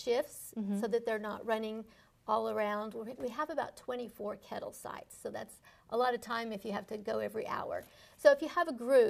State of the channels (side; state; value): both; identical; correlation 1.00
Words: so that they're not running all around. We have about 24 kettle sites, so that's a lot of time if you have to go every hour. So if you have a